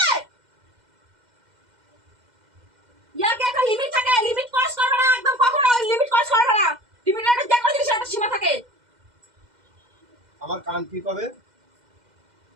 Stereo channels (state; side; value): late; left; 2.1 ms